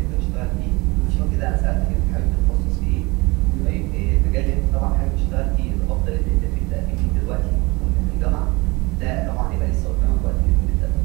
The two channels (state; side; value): quieter; left; 24.5 dB